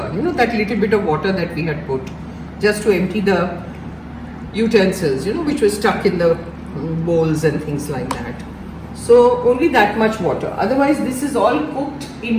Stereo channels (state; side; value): identical; both; correlation 1.00